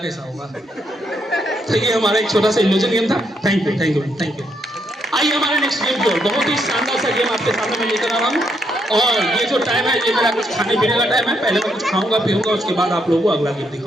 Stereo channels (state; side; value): normal; both; correlation 0.76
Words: होगा? तो ये हमारा एक छोटा सा इल्यूजन गेम था। Thank you, thank you, thank you. आइए हमारे नेक्स्ट गेम की ओर। बहुत ही शानदार सा गेम आपके सामने मैं लेकर आ रहा हूँ, और ये जो टाइम है ये मेरा कुछ खाने पीने का टाइम है। पहले मैं कुछ खाऊंगा पीऊंगा, उसके बाद आप लोगों को अगला गेम